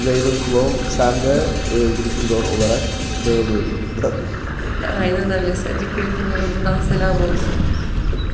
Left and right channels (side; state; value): both; identical; correlation 1.00